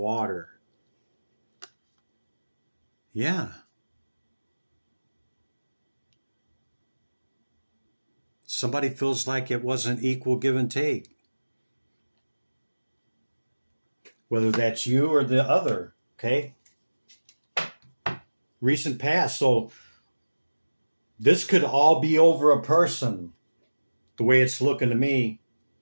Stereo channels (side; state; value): both; inverted; correlation -1.00